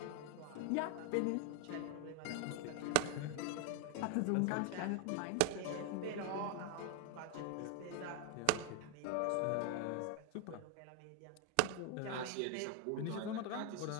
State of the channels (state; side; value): different; both; correlation 0.01